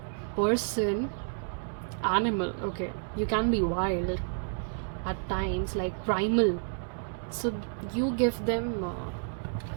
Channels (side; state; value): left; silent; digital silence